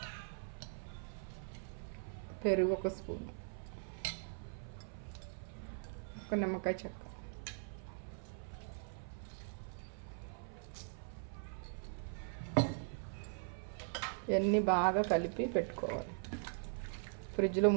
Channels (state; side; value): silent; left; 51 dB below the other